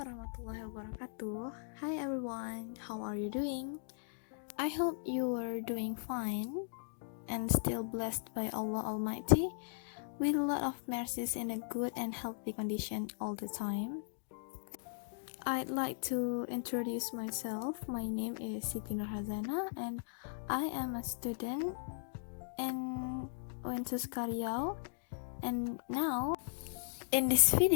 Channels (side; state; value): right; silent; digital silence